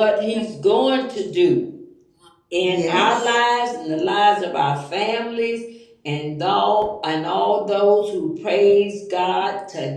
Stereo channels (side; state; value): both; identical; correlation 1.00